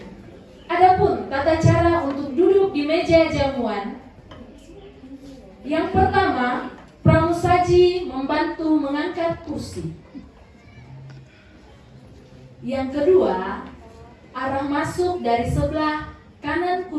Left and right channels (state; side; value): identical; both; correlation 1.00